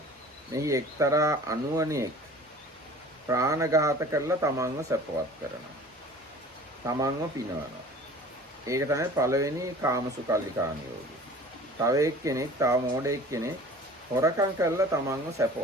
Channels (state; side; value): normal; both; correlation 0.45